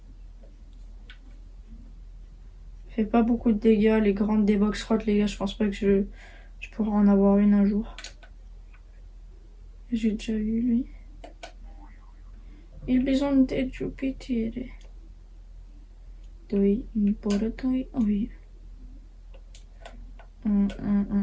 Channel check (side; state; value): both; identical; correlation 1.00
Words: Fait pas beaucoup de dégâts, les grandes des box Rat, les gars, je pense pas que je pourrai en avoir une un jour. J'ai déjà eu lui. Il bisogno di Jupiter. Doi, importoi, oui.